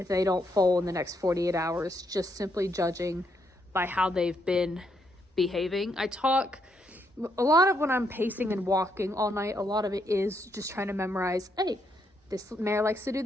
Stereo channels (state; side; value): normal; both; correlation 0.76